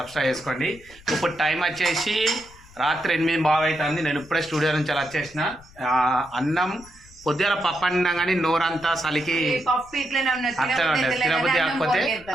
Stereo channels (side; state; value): left; noise; rumble, 23 dB below the sound